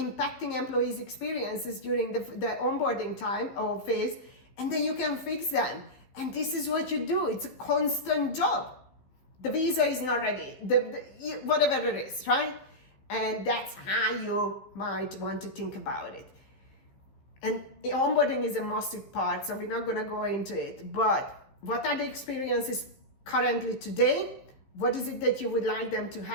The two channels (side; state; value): right; late; 15 ms